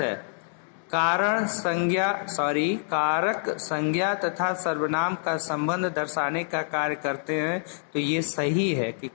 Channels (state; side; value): silent; right; digital silence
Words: है। कारक संज्ञा तथा सर्वनाम का संबंध दर्शाने का कार्य करते हैं, तो ये सही है कि